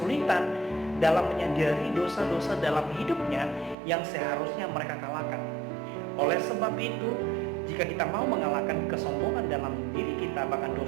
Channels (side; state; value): left; drops out; at 3.8 s